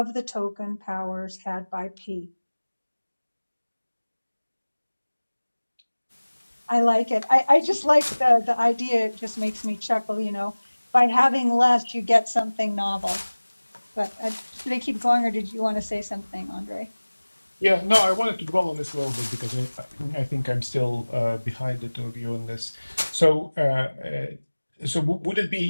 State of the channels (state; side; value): inverted; both; correlation -1.00